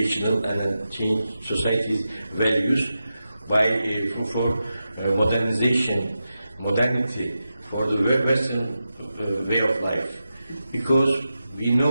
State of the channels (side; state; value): both; inverted; correlation -0.90